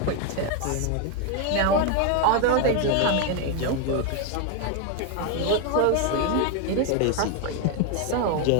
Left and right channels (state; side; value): different; both; correlation 0.01